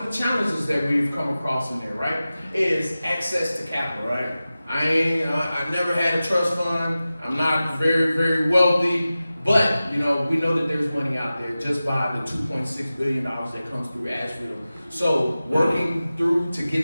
the challenges that we've come across in there, right, is access to capital, right? I've never had a trust fund. I'm not very, very wealthy, but we know that there's money out there just by the $2.6 billion that comes through Asheville. So working through to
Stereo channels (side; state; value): both; inverted; correlation -0.95